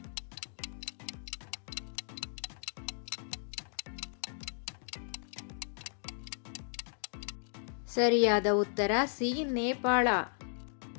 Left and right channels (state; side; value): silent; right; digital silence